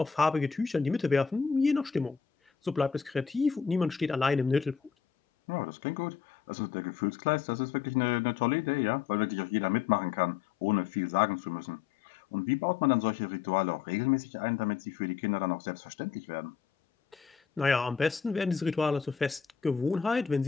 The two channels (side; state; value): right; quieter; 6.9 dB